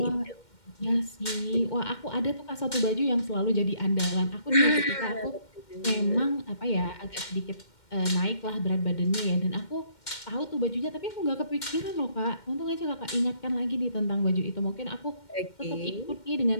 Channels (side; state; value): right; late; 2.1 ms